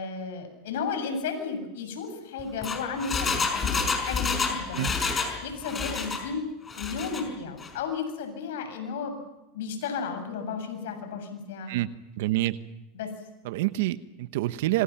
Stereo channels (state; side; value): normal; both; correlation 0.09